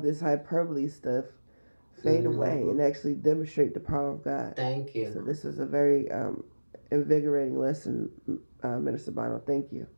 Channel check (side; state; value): both; inverted; correlation -1.00